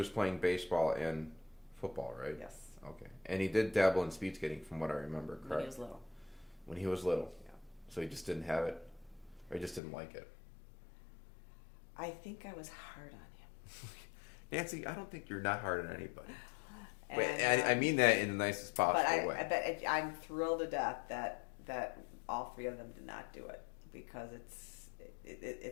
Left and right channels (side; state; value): right; drops out; at 9.8 s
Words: playing baseball and football, right? Yes. Okay. And he did dabble in speed skating, from what I remember, correct? When he was little. When he was little? Yeah. So he just didn't have it? Or he just didn't like it? I think I was hard on him. Nancy, I don't think you're not hard on anybody. And, I mean that in the nicest possible way. But I'm thrilled to death that all 3 of them did not do it, because